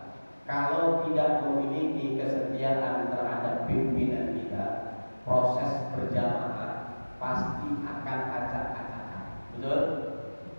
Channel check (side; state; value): both; inverted; correlation -1.00